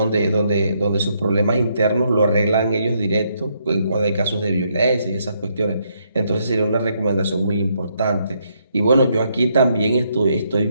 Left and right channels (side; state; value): both; inverted; correlation -0.75